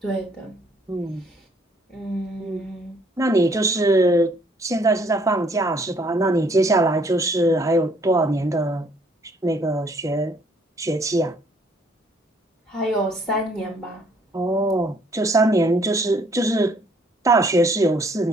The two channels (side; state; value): both; normal; correlation 0.63